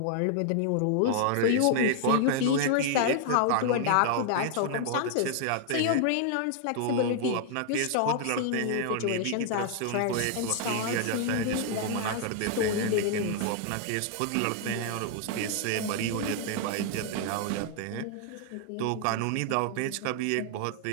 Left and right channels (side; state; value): both; different; correlation 0.00